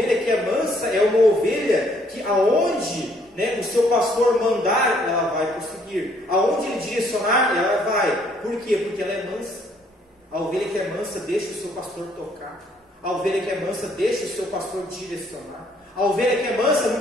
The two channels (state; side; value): normal; both; correlation 0.65